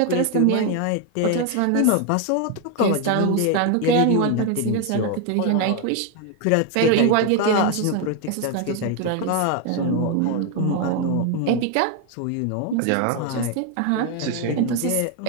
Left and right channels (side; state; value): both; different; correlation 0.01